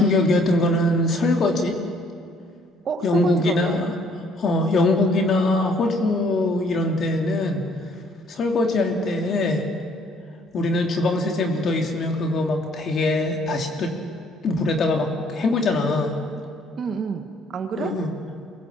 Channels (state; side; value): normal; both; correlation 0.62